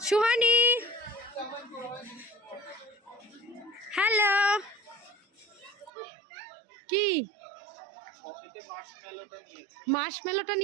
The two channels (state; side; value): drops out; left; at 5.9 s